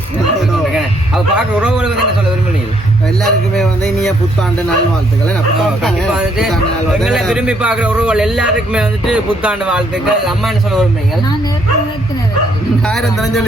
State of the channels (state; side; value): normal; both; correlation 0.70